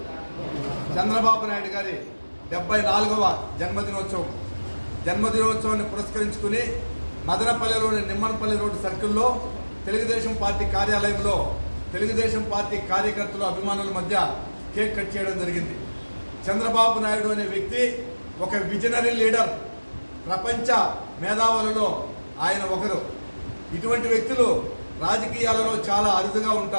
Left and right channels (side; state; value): both; inverted; correlation -1.00